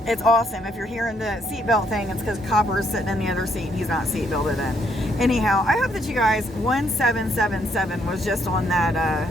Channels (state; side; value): normal; both; correlation 0.72